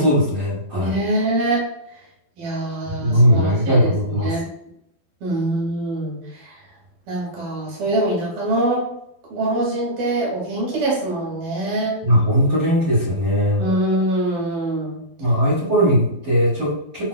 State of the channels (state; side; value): late; left; 12 ms